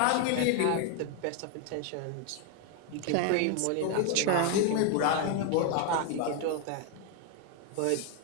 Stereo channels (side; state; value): both; different; correlation 0.01